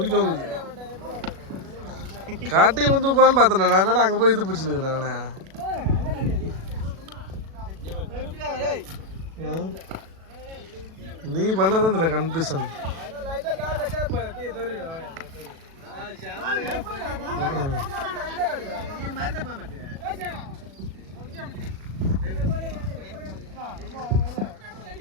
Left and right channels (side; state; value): left; late; 37 ms